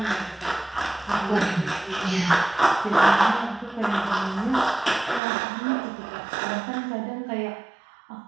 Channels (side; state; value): left; drops out; at 5.2 s